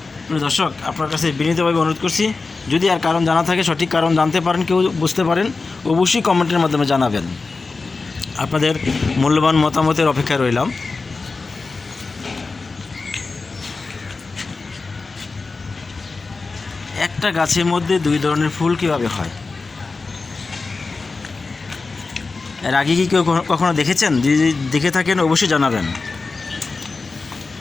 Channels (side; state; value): right; quieter; 4.0 dB